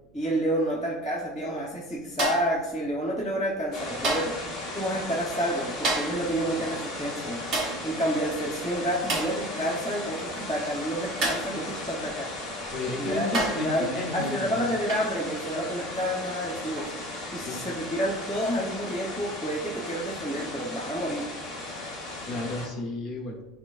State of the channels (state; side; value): noise; right; hum, 29 dB below the sound